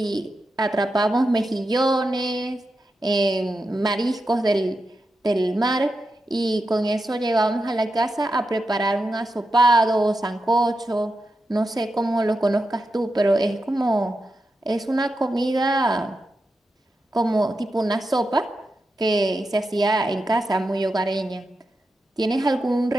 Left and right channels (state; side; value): normal; both; correlation 0.88